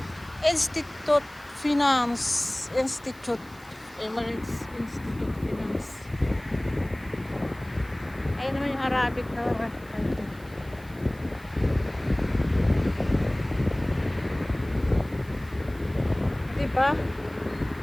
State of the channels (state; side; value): noise; right; hiss, 25 dB below the sound